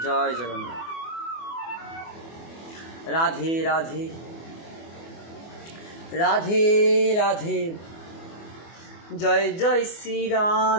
জয় জগন্নাথ। রাধে রাধে, রাধে রাধে, জয় জয় শ্রী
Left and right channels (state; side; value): late; right; 24 ms